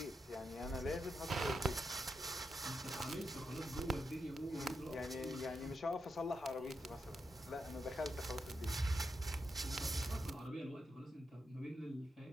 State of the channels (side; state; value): both; normal; correlation 0.85